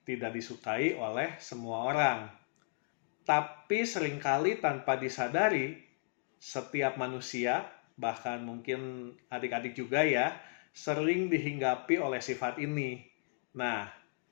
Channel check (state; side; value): silent; right; digital silence